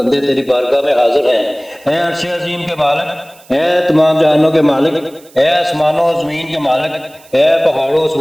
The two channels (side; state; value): right; noise; hiss, 26 dB below the sound